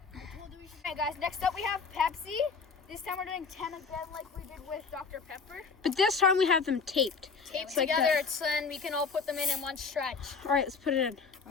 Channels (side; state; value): right; quieter; 5.1 dB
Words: Okay, guys, next up we have Pepsi. This time we're doing 10 again like we did with Dr. Pepper. But this time we have them taped. Taped like together, that. so then we can all put them in one stretch. All right, let's put it in.